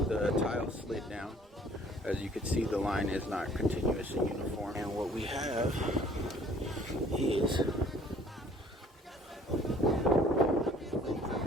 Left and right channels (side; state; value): both; normal; correlation 0.56